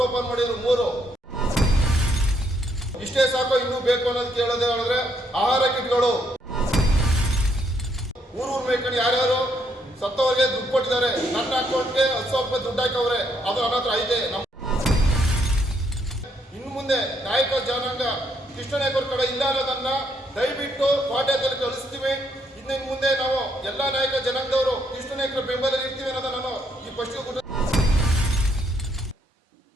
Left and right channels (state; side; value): normal; both; correlation 0.73